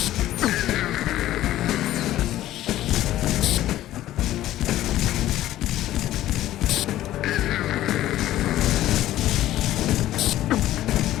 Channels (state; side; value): quieter; right; 14.0 dB